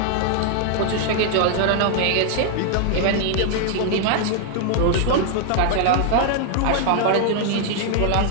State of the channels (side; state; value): both; different; correlation 0.00